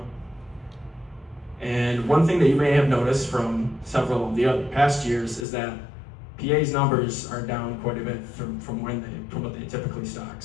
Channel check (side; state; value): right; drops out; at 5.5 s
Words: And one thing that you may have noticed from several of the other past years is that PA's numbers are down quite a bit from what they typically stock.